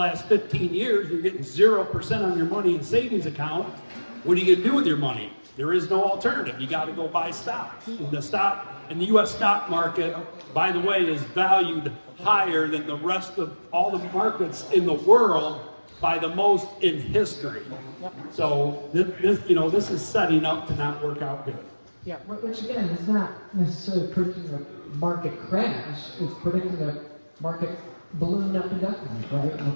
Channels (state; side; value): inverted; both; correlation -1.00